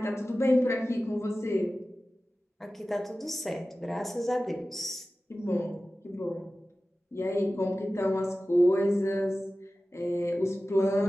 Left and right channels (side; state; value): both; normal; correlation 0.96